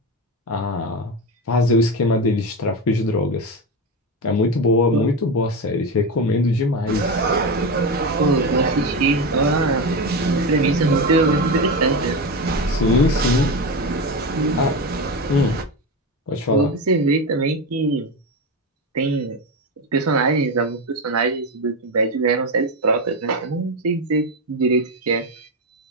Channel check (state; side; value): normal; both; correlation 0.17